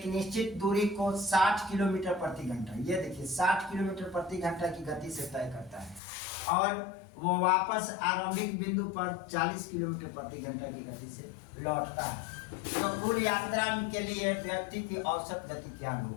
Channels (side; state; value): right; drops out; at 6.0 s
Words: निश्चित दूरी को 60 किलोमीटर प्रति घंटा, ये देखिए 60 किलोमीटर प्रति घंटा की गति से तय करता है और वो वापस आरंभिक बिंदु पर 40 किलोमीटर प्रति घंटा की गति से लौटता है। तो कुल यात्रा के लिए व्यक्ति की औसत गति क्या